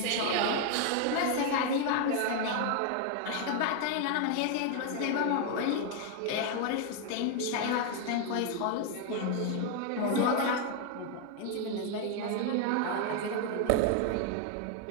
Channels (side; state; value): both; different; correlation 0.01